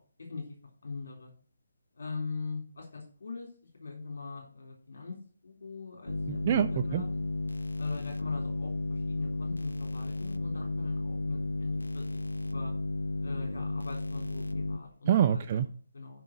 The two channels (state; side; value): inverted; both; correlation -0.78